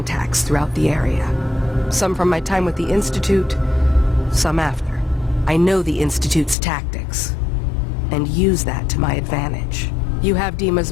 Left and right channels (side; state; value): right; drops out; at 6.6 s